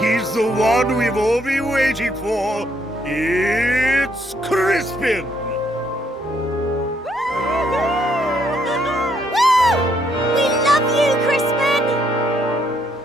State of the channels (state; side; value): normal; both; correlation 0.71